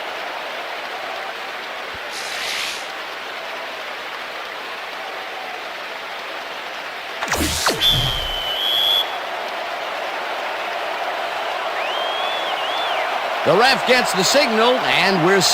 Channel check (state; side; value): identical; both; correlation 1.00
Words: The ref gets the signal, and we're